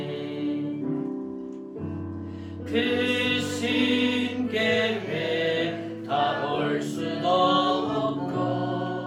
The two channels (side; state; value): both; identical; correlation 1.00